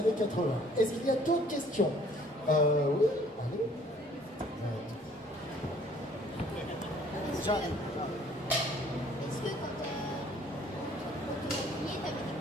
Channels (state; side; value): normal; both; correlation 0.57